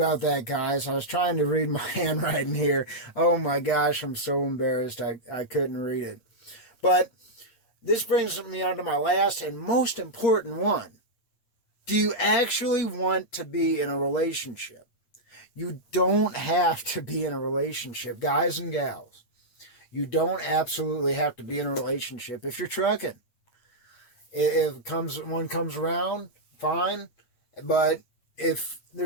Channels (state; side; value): late; right; 8.7 ms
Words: that, guys. I was trying to read my handwriting here. Oh my gosh, I'm so embarrassed. I couldn't read it. But this brings me on to my last and most important one. Do you actually want to be in a relationship? You don't have to be in a relationship, guys and gals. You don't absolutely have to be in a relationship if you're trucking. If one comes around, fine. But if